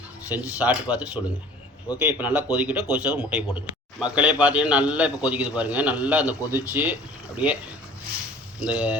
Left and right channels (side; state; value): both; normal; correlation 0.46